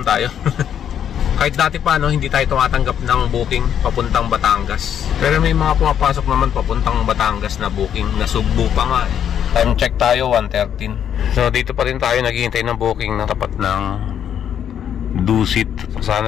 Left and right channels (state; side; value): quieter; right; 9.2 dB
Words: tayo. Kahit dati pa hindi tayo tumatanggap ng booking papuntang Batangas. Pero may mga pumapasok naman papuntang Batangas na booking. Nasugbo pa nga Time check tayo, 1:13. So dito pa rin tayo naghihintay ng booking na tapat ng Dusit.